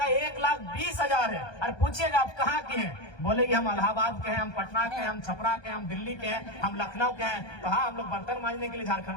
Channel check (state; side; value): late; right; 1.2 ms